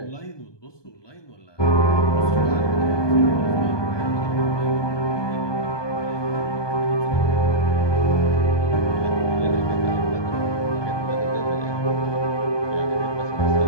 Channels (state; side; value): late; right; 1.2 ms